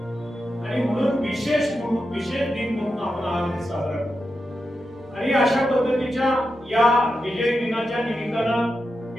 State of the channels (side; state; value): both; normal; correlation 0.89